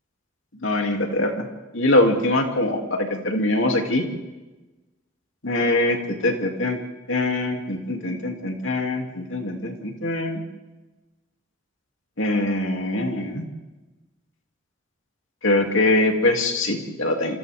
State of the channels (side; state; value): both; normal; correlation 0.06